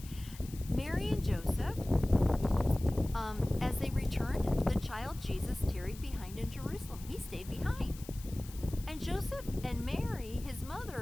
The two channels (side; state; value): left; noise; hiss, 18 dB below the sound